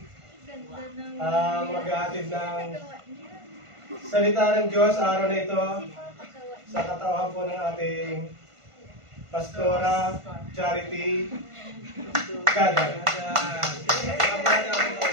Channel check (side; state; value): left; late; 1.5 ms